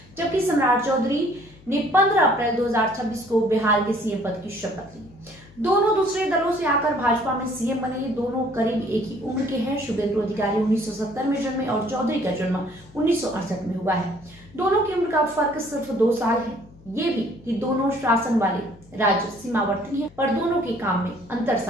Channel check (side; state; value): left; noise; hum, 24 dB below the sound